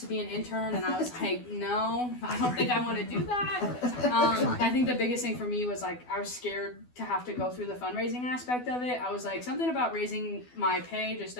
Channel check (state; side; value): late; right; 12 ms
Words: be an intern, and I was like, no, I don't think I want to do that. I think the biggest thing for me was like I was scared to have to go through the fundraising aspect of it. I was like, something about raising my pay just